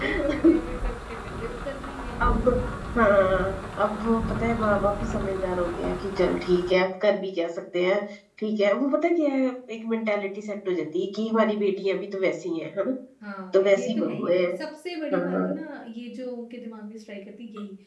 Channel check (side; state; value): both; identical; correlation 1.00